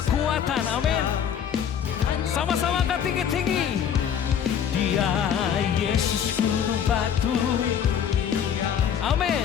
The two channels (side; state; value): right; quieter; 8.5 dB